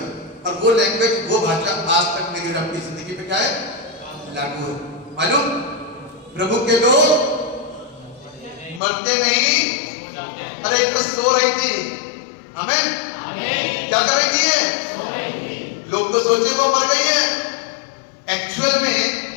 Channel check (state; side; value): drops out; right; at 8.8 s